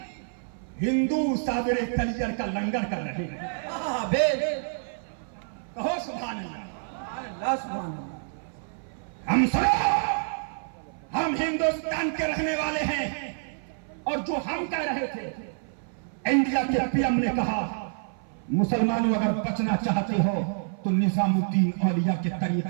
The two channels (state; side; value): silent; left; 56 dB below the other